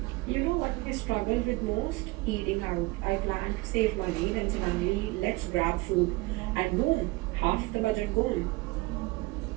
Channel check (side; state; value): left; quieter; 22.6 dB